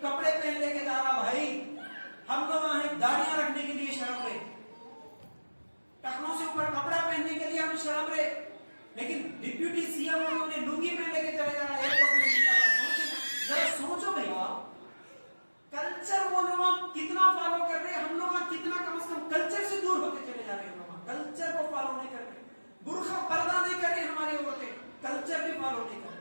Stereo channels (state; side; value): inverted; both; correlation -1.00